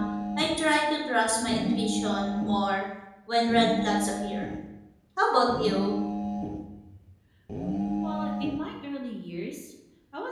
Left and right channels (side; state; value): both; identical; correlation 1.00